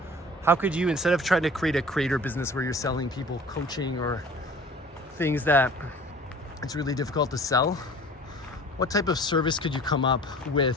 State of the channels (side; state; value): both; normal; correlation 0.46